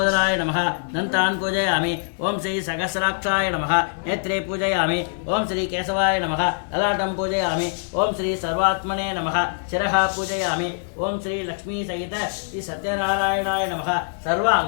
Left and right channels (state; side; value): silent; right; digital silence